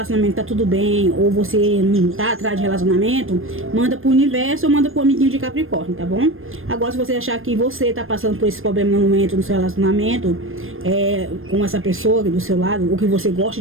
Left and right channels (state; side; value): late; left; 0.60 ms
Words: tá tudo bem, ou você não tá atrás de relacionamento, manda pro universo ou manda pro amiguinho de Capricórnio, tá bom? Agora, se você achar que você tá passando por esse problema no momento, no seu relacionamento, com essa pessoa do seu lado, ou que você gosta